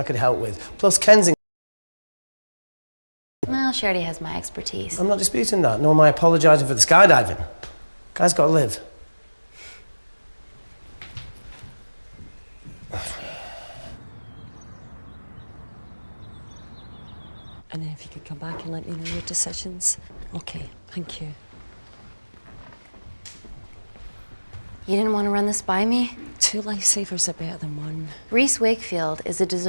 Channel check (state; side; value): inverted; both; correlation -1.00